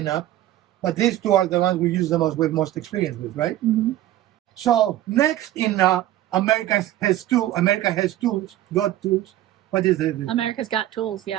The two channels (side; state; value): left; quieter; 13.8 dB